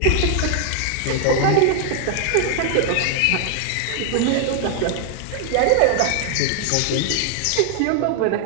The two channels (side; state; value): both; different; correlation 0.00